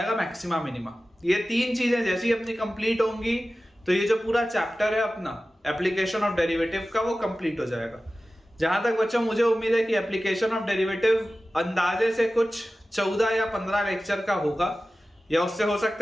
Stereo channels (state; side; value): normal; both; correlation 0.96